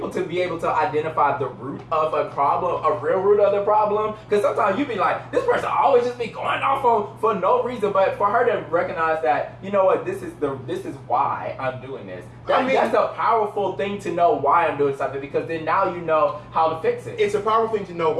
to be able to identify the root of a problem, a real root of the problem, because sometimes you be like, this person always just be going off on for no reason, but for her to recognize that, you know what, this is why I'm doing this. That's a powerful thing to know why I'm doing something, because then now you know how to fix it. It's a powerful thing to know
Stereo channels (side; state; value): both; identical; correlation 1.00